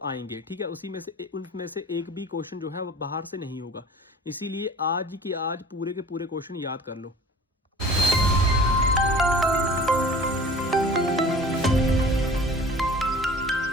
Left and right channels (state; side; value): normal; both; correlation 0.45